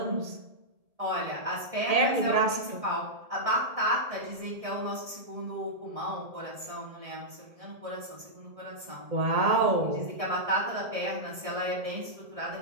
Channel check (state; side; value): late; left; 1.7 ms